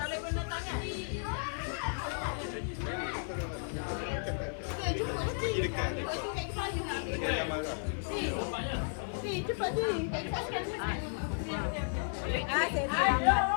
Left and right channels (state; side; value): silent; right; 55 dB below the other